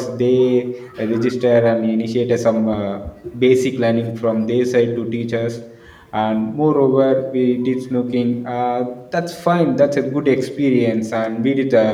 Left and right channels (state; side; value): identical; both; correlation 1.00